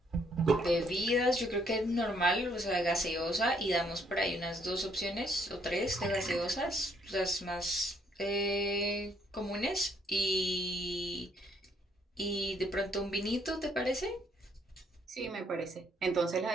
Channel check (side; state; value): both; normal; correlation 0.68